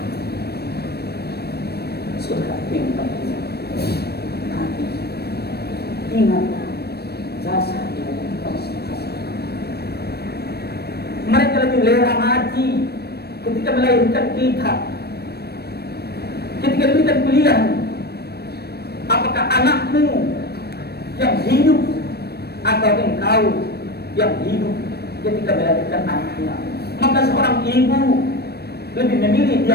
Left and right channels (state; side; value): late; right; 0.47 ms